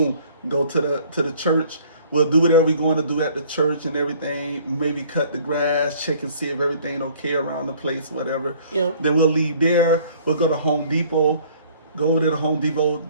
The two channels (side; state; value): both; inverted; correlation -0.55